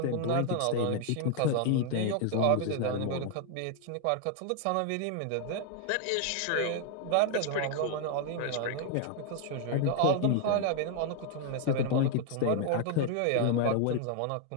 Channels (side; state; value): both; different; correlation 0.00